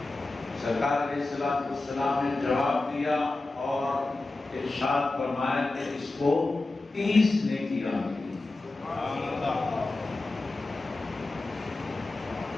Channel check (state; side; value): quieter; right; 3.2 dB